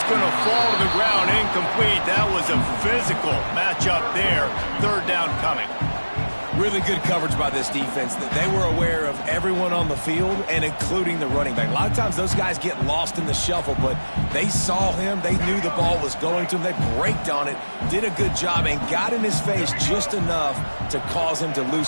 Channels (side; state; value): both; inverted; correlation -1.00